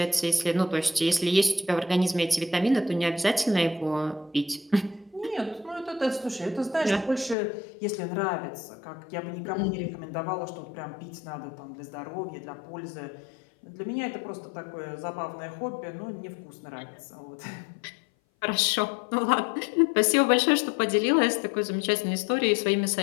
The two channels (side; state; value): right; drops out; at 7.4 s